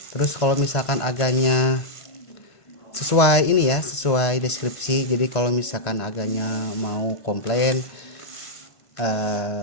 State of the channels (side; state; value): right; late; 1.5 ms